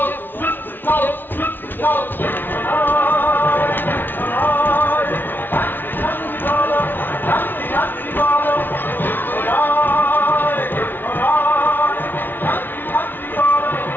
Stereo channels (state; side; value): late; right; 0.095 ms